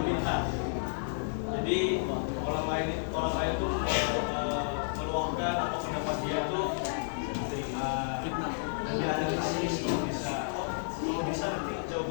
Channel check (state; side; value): silent; right; digital silence